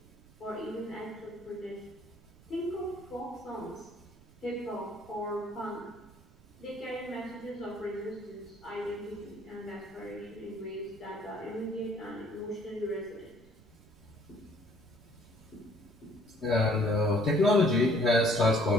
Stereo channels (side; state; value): right; noise; rumble, 24 dB below the sound